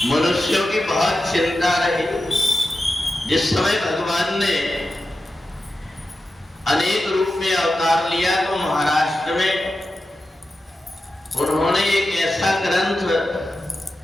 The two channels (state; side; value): normal; both; correlation 0.91